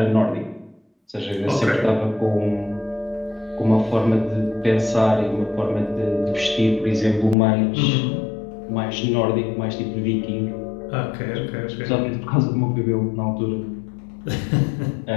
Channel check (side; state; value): right; drops out; at 7.4 s